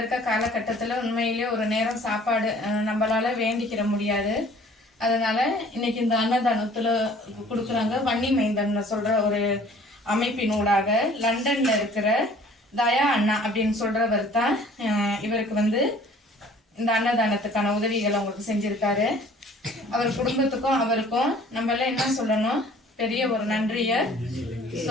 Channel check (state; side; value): normal; both; correlation 0.52